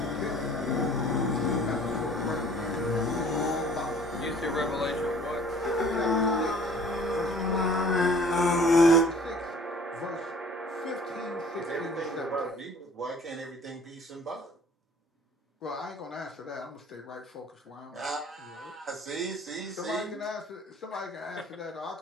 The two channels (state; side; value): normal; both; correlation 0.51